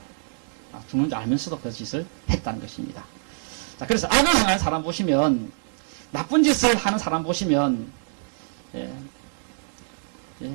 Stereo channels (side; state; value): left; silent; digital silence